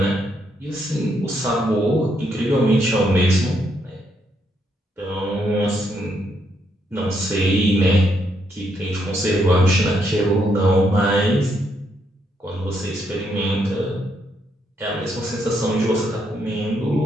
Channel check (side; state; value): both; normal; correlation 0.76